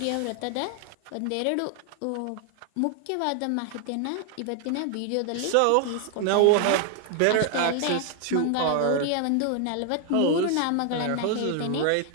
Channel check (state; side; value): different; both; correlation 0.00